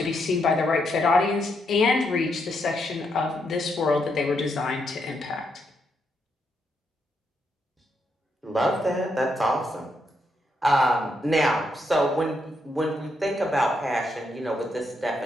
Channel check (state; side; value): normal; both; correlation 0.79